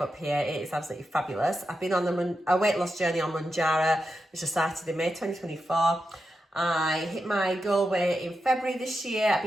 up here. It is absolutely fabulous. I've been on a weight loss journey on Mounjaro, which I started in May 2024. I hit my goal weight in February this year. I've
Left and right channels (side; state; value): both; normal; correlation 0.88